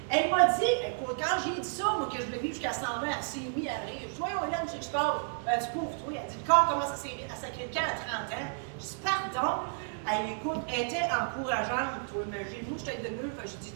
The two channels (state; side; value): silent; left; digital silence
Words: elle m'a dit, écoute, quand j'ai dit ça, moi, que je devais vivre jusqu'à 120, elle s'est mise à rire. Je dis, voyons, Hélène, tu sais que je parle. Du pauvre, toi. Elle dit, le corps commence à sacrer le camp à 30 ans. Je dis, pardon. Elle écoute, elle était encourageante, toi, imagine. Moi, je t'aide de mieux. J'ai dit,